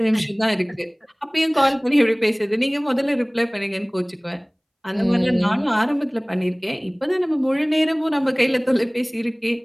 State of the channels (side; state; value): both; identical; correlation 1.00